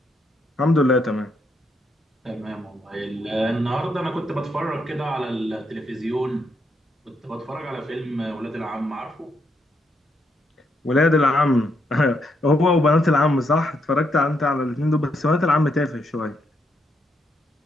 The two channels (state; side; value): normal; both; correlation 0.77